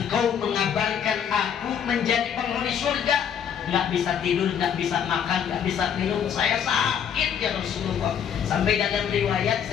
mengabarkan aku menjadi penghuni surga, nggak bisa tidur, nggak bisa makan, nggak bisa minum, saya sakit ya Rasulullah." Sampai dalam riwayat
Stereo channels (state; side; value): quieter; right; 8.3 dB